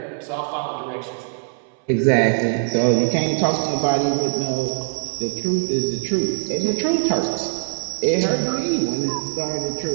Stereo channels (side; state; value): left; silent; 61 dB below the other